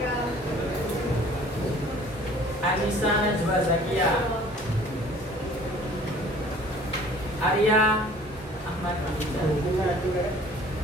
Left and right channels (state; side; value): normal; both; correlation 0.51